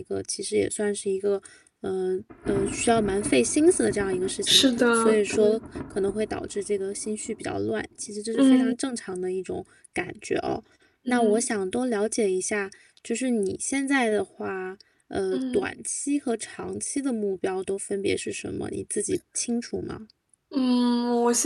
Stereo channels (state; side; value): identical; both; correlation 1.00